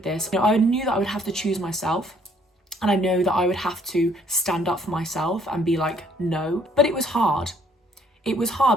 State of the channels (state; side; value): normal; both; correlation 0.64